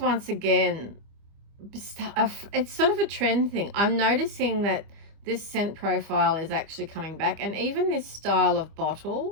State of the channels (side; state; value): left; late; 25 ms